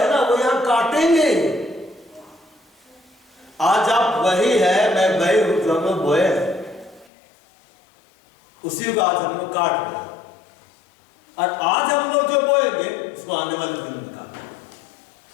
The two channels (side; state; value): right; drops out; at 7.1 s